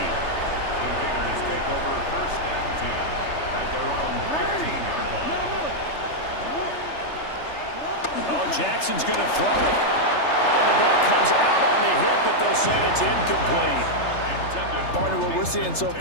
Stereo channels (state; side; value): late; right; 3.3 ms